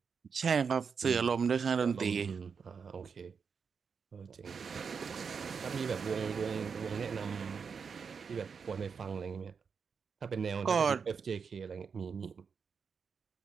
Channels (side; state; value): left; quieter; 6.0 dB